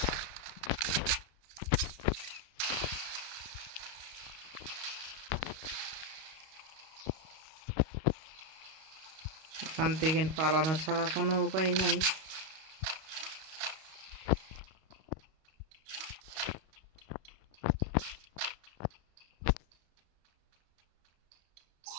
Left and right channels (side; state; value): left; late; 32 ms